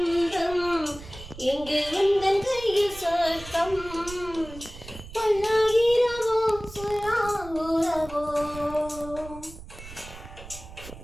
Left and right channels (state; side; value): noise; right; rumble, 15 dB below the sound